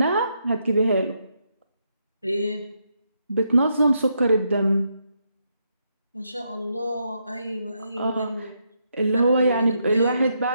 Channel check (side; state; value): both; inverted; correlation -0.79